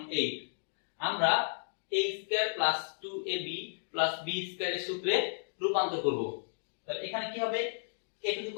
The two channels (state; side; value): silent; right; digital silence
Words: 8। আমরা a square plus 2ab plus b square এর সূত্রে রূপান্তর করব। তাহলে এখানে কি হবে, a টু দি